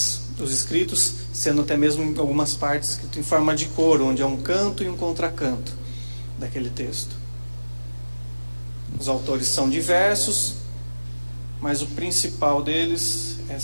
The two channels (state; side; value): inverted; both; correlation -1.00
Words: os escritos, sendo até mesmo em algumas partes escrito em forma de coro, onde é um canto e um contracanto daquele texto. Os autores são diversos, mas o principal deles é